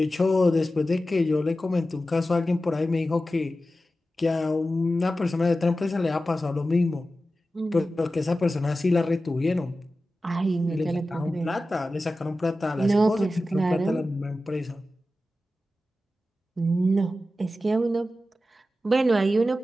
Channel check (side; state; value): both; normal; correlation 0.94